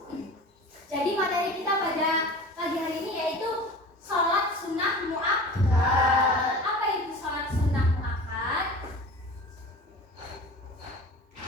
Jadi materi kita pada pagi hari ini yaitu sholat sunnah muakkad. Apa itu sholat sunnah muakkad?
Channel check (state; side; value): normal; both; correlation 0.37